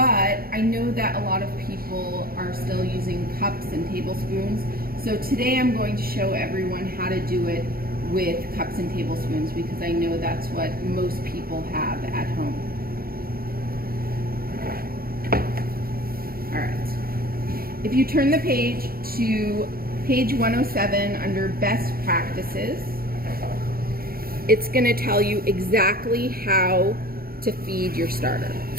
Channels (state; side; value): late; left; 0.43 ms